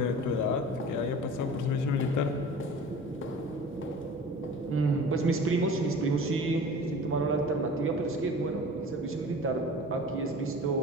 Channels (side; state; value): both; normal; correlation 0.40